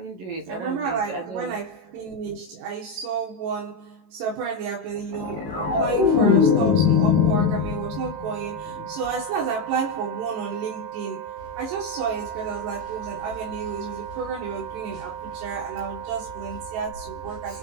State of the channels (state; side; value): late; left; 18 ms